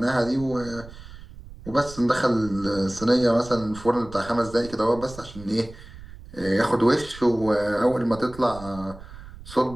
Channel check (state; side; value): noise; right; rumble, 17 dB below the sound